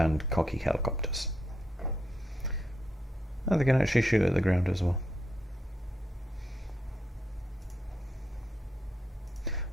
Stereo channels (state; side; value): normal; both; correlation 0.80